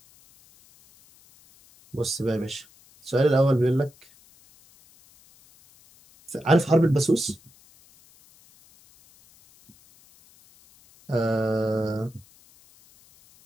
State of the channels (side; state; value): left; noise; hiss, 28 dB below the sound